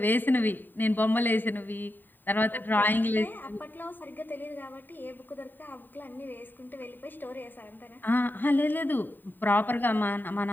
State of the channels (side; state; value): right; late; 0.091 ms